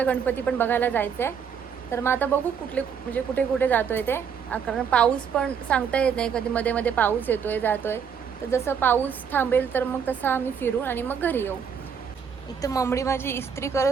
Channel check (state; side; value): quieter; left; 7.1 dB